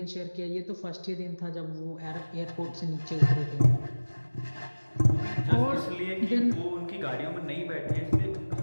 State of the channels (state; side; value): inverted; both; correlation -1.00